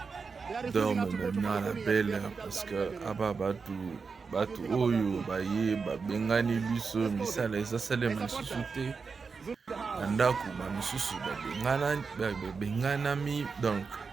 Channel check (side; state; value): left; quieter; 5.0 dB